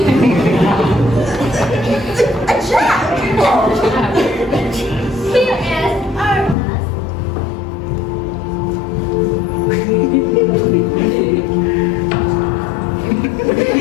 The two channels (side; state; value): right; drops out; at 6.6 s